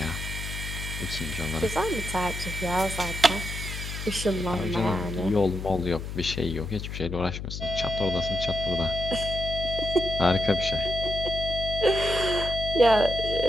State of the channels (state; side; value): noise; left; hum, 7 dB below the sound